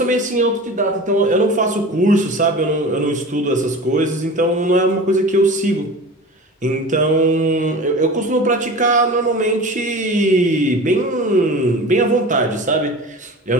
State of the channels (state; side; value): normal; both; correlation 0.35